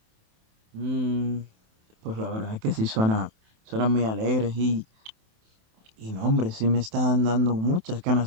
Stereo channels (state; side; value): late; left; 27 ms